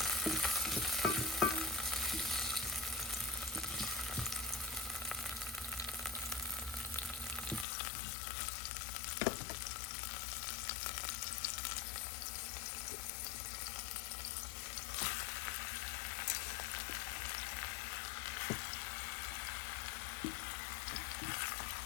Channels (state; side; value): drops out; right; at 7.7 s